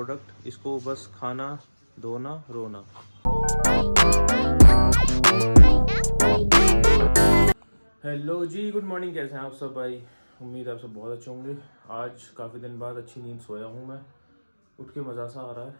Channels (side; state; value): both; inverted; correlation -1.00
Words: इसको बस खाना, धोना, रोना। हेलो जी, गुड मॉर्निंग। कैसे हैं आप सब भाई? उम्मीद है आप सब बहुत अच्छे होंगे। आज काफ़ी दिन बाद अच्छी नींद सोया हूँ मैं। उठ के मज़ा सा आ रहा है।